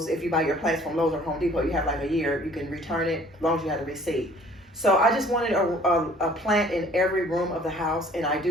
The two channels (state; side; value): normal; both; correlation 0.54